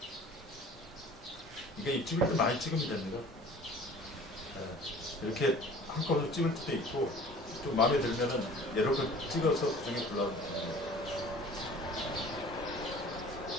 이게 찍을 때 많이 찍으면 됩니다. 네. 이렇게 한꺼번에 찍을 때도 있고 좀 마음에 들면은 여러 번 찍어서 그중에 골라도 됩니다.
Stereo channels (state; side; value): normal; both; correlation 0.46